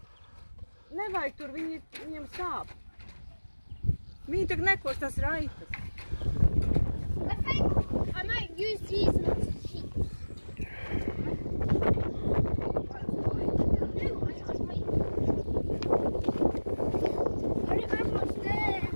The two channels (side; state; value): both; inverted; correlation -1.00